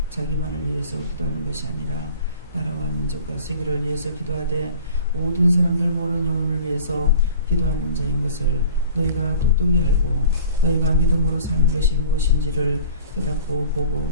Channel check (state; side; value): inverted; both; correlation -0.45